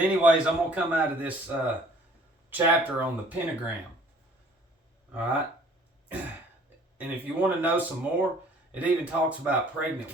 I'm going to come out of this chapter on the pentagram. Alright? And if you want to know some more, it even talks about pregnant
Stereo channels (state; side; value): normal; both; correlation 0.54